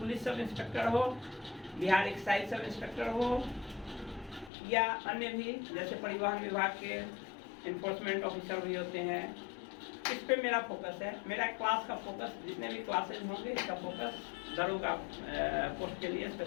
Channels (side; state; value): right; drops out; at 4.5 s